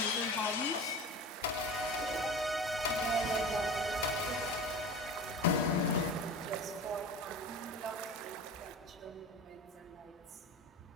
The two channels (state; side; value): normal; both; correlation 0.34